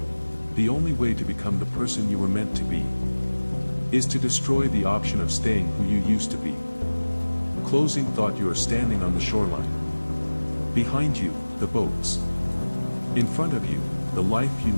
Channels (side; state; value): both; inverted; correlation -1.00